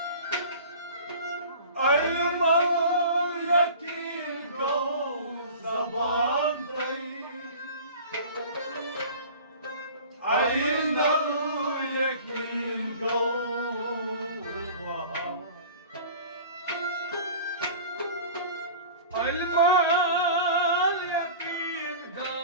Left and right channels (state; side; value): inverted; both; correlation -0.41